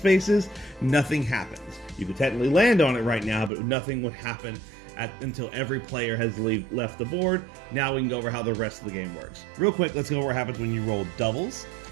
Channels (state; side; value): drops out; left; at 3.5 s